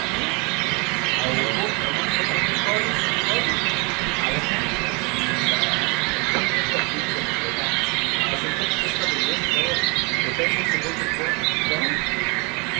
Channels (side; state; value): left; quieter; 31.2 dB